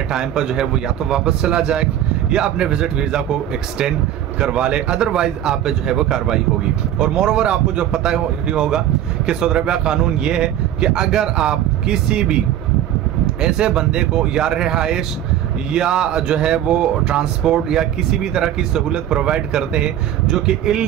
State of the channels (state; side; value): quieter; left; 11.4 dB